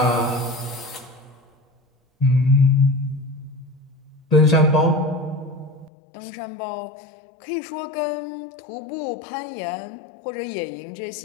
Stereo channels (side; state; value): right; drops out; at 5.9 s